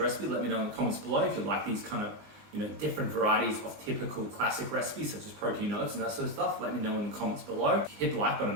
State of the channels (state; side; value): late; left; 20 ms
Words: let me know in the comments below. If you like these kind of different varieties of typical classic recipes such as protein oats and that sort of stuff, let me know in the comments below. Hit the like button,